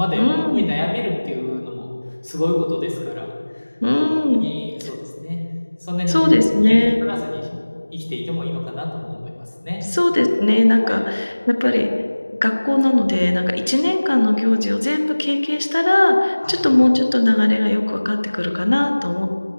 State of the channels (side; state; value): both; inverted; correlation -1.00